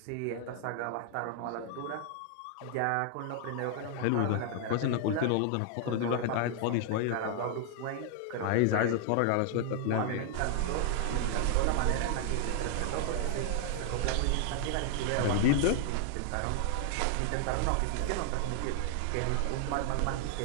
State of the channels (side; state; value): both; different; correlation 0.00